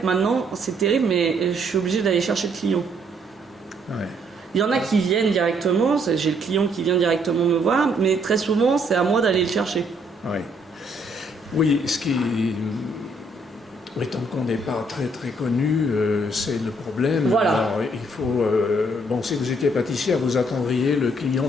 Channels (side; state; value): both; normal; correlation 0.68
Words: maintenant c'est terrible, mais je suis obligée d'aller chercher le client. Ouais. Il y en a qui viennent directement, j'ai le client qui vient directement me voir, mais très souvent c'est à moi d'aller le chercher. Ouais. Oui, ce qui, étant qu'on n'est pas très très connu, c'est le problème. Voilà. Alors, il faut, bon, si vous étiez pâtissière, vous attendriez le client